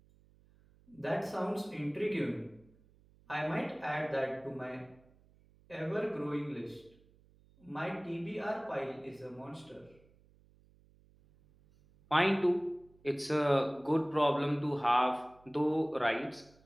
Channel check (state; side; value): noise; right; hum, 29 dB below the sound